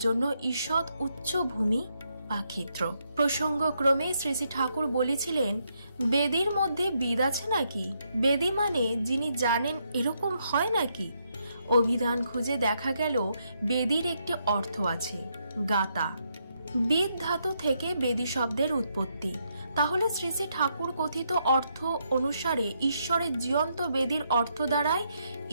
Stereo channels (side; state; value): both; inverted; correlation -0.78